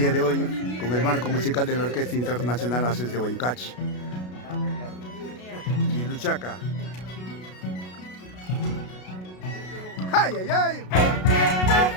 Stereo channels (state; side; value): late; right; 33 ms